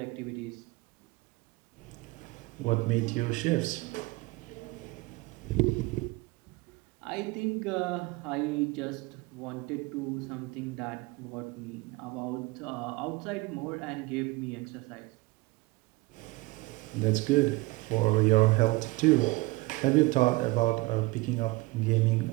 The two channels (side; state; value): left; quieter; 22.2 dB